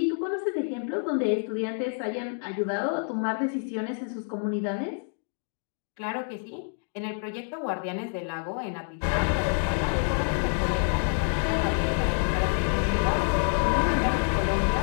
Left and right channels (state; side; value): silent; right; 56 dB below the other